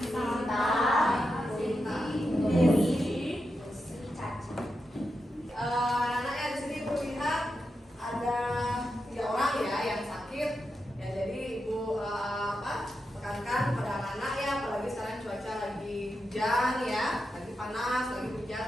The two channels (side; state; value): both; normal; correlation 0.88